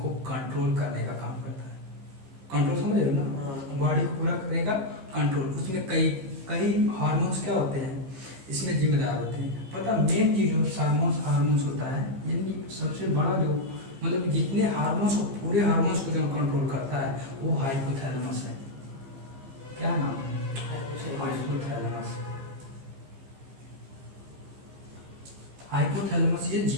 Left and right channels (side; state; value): left; late; 15 ms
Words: कंट्रोल करने का काम करता है। कंट्रोल समझ रहे हो ना? बॉडी को पूरा करेगा कंट्रोल। उसमें कई कई हार्मोन्स क्या होते हैं इसमें जिम्मेदार होते हैं। पता मेन चीज जो हार्मोन्स होता है, यानी सबसे बड़ा जो मतलब जितने हार्मोन्स को पूरे हार्मोन्स को जो कंट्रोल करता है वो हाइपोथैलेमस है। क्या नाम है? हाइपोथैलेमस। हाइपोथैलेमस ये